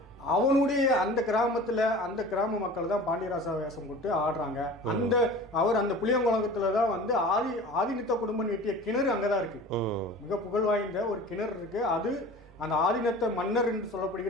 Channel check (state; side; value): normal; both; correlation 0.40